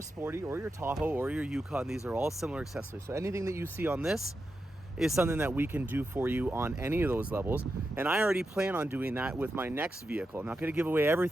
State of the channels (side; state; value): both; normal; correlation 0.88